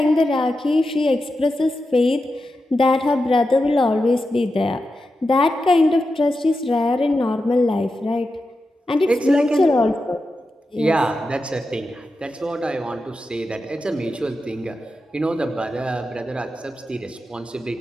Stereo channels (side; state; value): both; normal; correlation 0.90